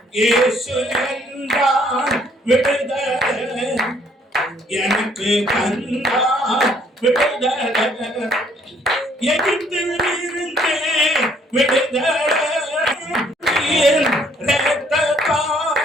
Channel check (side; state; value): both; normal; correlation 0.64